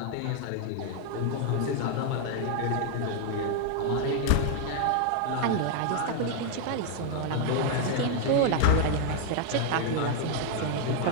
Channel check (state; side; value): different; both; correlation 0.00